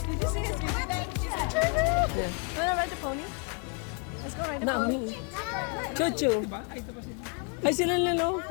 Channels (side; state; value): right; quieter; 36.8 dB